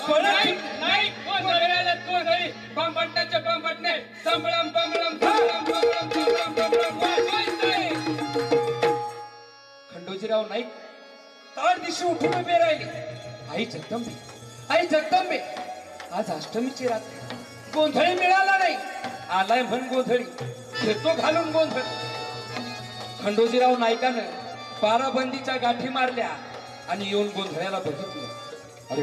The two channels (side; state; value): both; identical; correlation 1.00